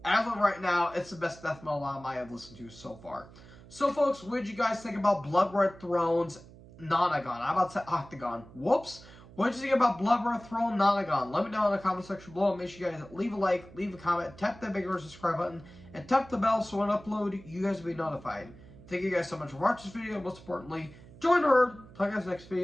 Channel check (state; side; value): noise; right; hum, 20 dB below the sound